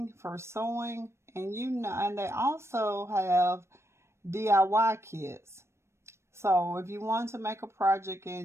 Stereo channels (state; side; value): late; left; 0.13 ms